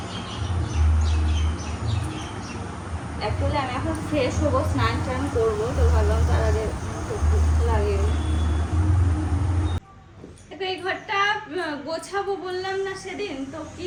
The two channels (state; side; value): identical; both; correlation 1.00